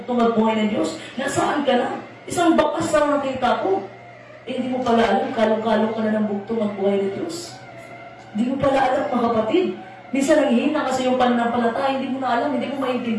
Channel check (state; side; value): identical; both; correlation 1.00